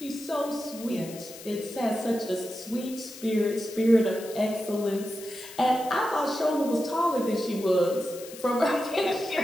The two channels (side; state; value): left; noise; hiss, 15 dB below the sound